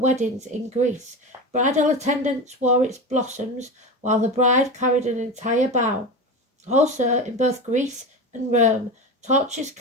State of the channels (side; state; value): both; normal; correlation 0.24